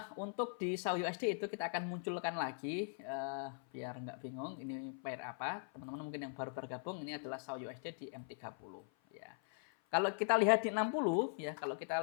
Untuk di SAU USD itu kita akan munculkan lagi biar nggak bingung ini pair apa. Teman-teman mungkin yang baru bergabung, ini adalah SAU USD di M30 ya. Kalau kita lihat di 60 ya, kalau kita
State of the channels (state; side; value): silent; right; 51 dB below the other